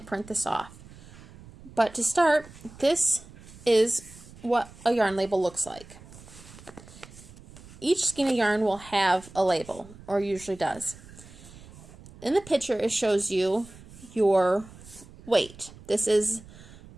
print this off. But to start, this is what a yarn label looks like. Each skein of yarn will have a label, or usually does. In the picture, it shows you your weight. This is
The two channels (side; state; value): right; noise; rumble, 20 dB below the sound